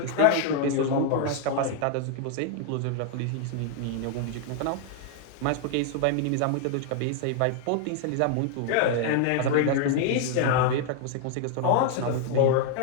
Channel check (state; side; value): different; both; correlation 0.00